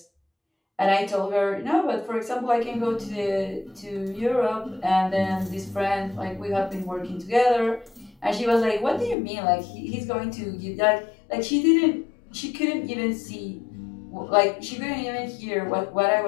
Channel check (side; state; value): right; drops out; at 9.2 s